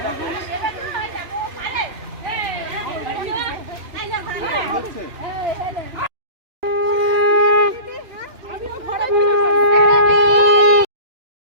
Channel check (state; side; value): late; left; 2.9 ms